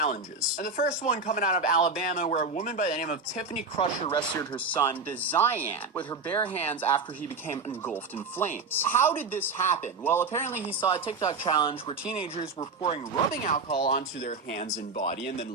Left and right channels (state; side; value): quieter; left; 4.1 dB